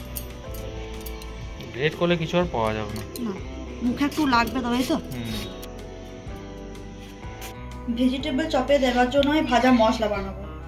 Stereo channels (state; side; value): identical; both; correlation 1.00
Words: গ্রেট করলে কিছু আর পাওয়া যাবে না, মুখে একটু লাগবে, তবেই তো। ভেজিটেবল চপে দেওয়ার জন্য আমি ভাজা মশলা বানাবো,